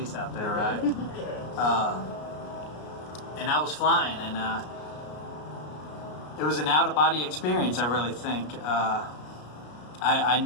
out there, right? And I was flying, and it was an out-of-body experience, I really think. I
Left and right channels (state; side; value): late; right; 33 ms